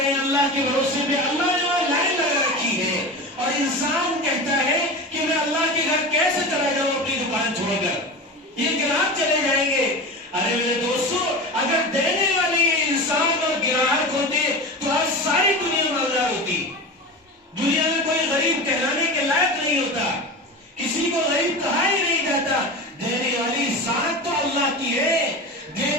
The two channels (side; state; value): both; normal; correlation 0.28